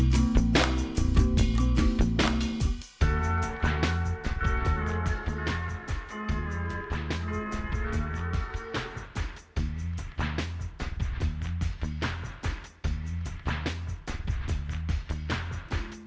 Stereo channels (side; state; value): both; identical; correlation 1.00